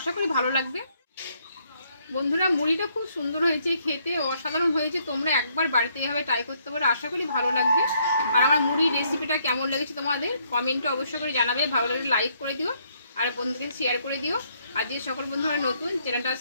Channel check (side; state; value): both; inverted; correlation -0.70